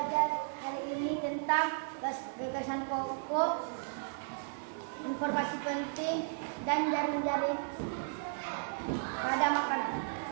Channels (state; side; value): silent; left; 55 dB below the other